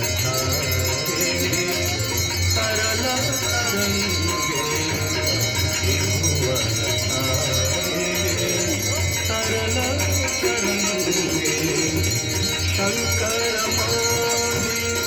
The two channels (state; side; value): identical; both; correlation 1.00